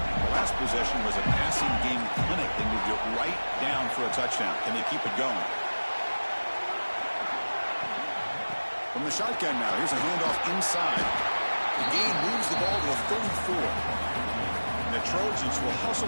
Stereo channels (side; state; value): both; inverted; correlation -1.00